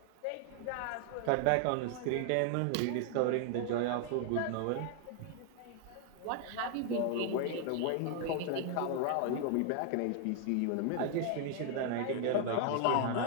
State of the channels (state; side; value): different; both; correlation 0.00